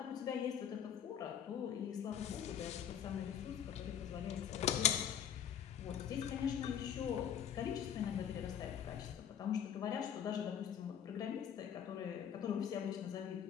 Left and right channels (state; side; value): quieter; right; 9.0 dB